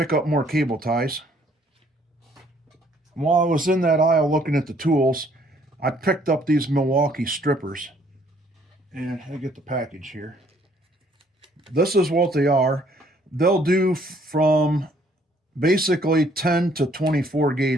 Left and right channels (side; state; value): both; normal; correlation 0.63